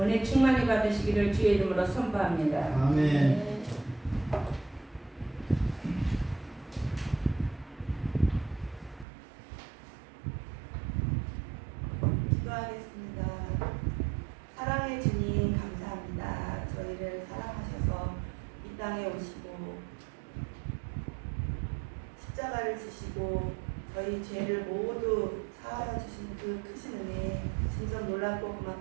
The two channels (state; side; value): drops out; left; at 9.1 s